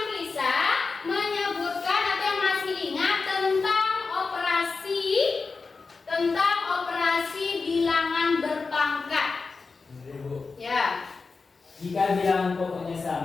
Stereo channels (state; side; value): quieter; right; 4.4 dB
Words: bisa menyebutkan atau yang masih ingat tentang operasi bilangan berpangkat? Ya. Jika bilangan pokoknya